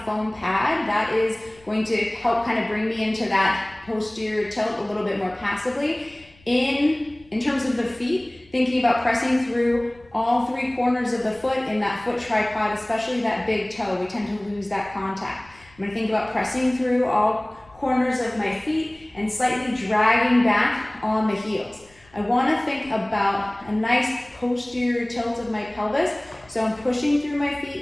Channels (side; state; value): left; noise; rumble, 28 dB below the sound